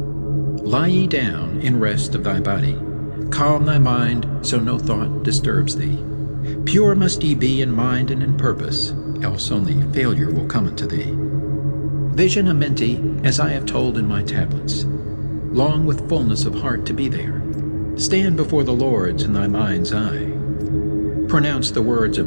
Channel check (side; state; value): both; inverted; correlation -1.00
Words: Lie ye down in rest of thy body, calm thy mind so no thought disturbs thee. Pure must ye be in mind and in purpose, else only failure will come unto thee. Vision Amenti as I have told in my tablets. Long with fullness of heart to be there. Stand before the lords in thy mind's eye. Pronounce the words